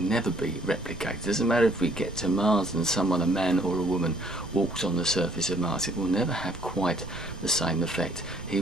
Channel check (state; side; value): noise; right; rumble, 14 dB below the sound